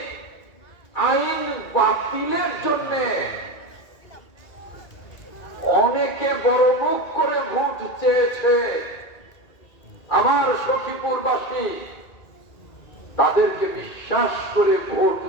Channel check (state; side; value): late; right; 2.3 ms